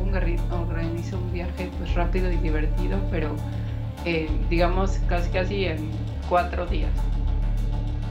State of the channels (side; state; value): both; identical; correlation 1.00